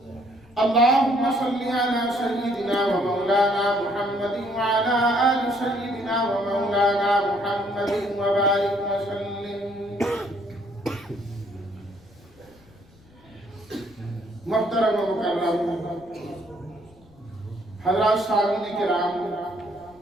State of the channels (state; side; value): noise; left; rumble, 27 dB below the sound